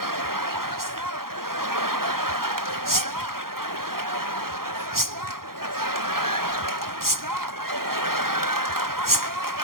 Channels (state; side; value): late; left; 0.92 ms